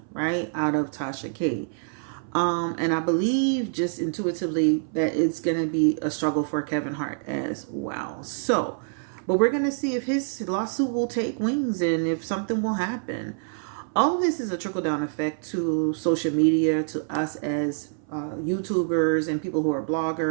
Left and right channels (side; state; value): left; silent; 59 dB below the other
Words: right, out of Tasha K. And I believe just intuitively that it's going to be a struggle for Kevin Hart as well. So, but we're going to see if his lawsuit will take wings and if something will happen. All of this is a trickle-down effect to social media, to us as YouTubers and people who are